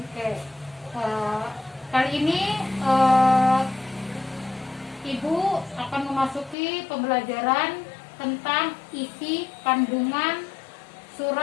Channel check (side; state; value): right; drops out; at 6.6 s